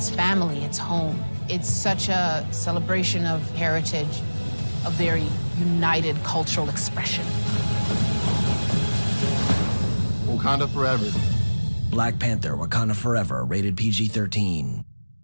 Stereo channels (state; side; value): inverted; both; correlation -1.00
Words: family, it's home. It's such a celebration of heritage, a very united cultural expression. Wakanda Forever. Black Panther, Wakanda Forever, rated PG-13.